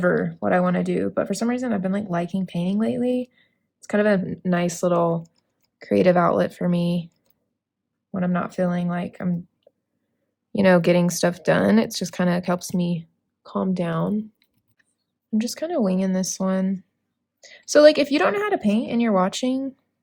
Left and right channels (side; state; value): both; identical; correlation 1.00